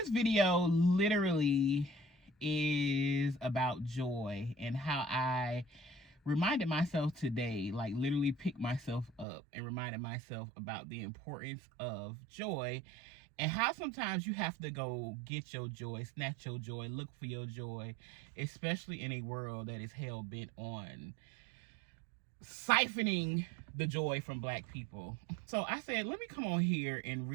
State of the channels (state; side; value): drops out; left; at 9.2 s